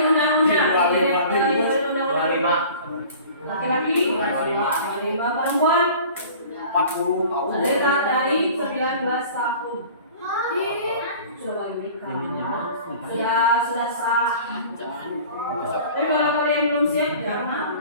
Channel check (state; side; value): inverted; both; correlation -0.44